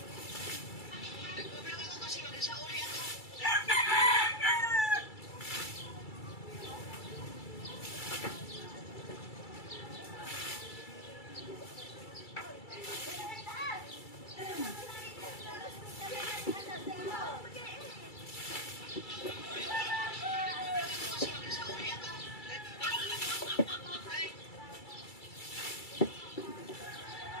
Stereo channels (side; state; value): right; late; 2.3 ms